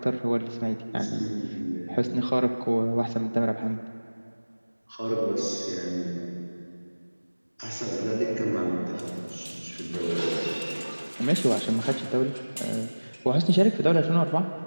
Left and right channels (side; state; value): both; inverted; correlation -1.00